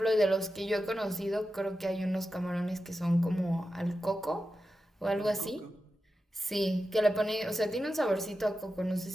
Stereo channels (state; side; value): normal; both; correlation 0.91